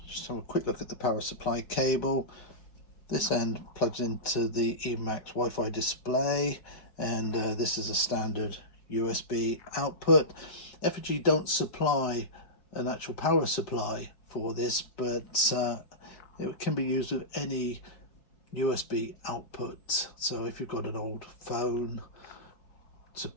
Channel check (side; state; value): right; late; 5.1 ms